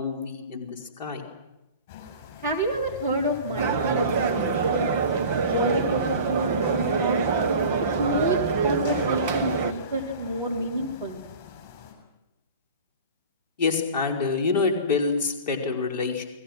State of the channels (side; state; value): both; inverted; correlation -0.38